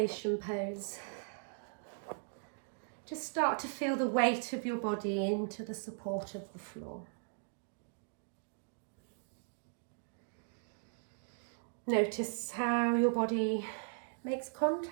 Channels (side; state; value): left; silent; digital silence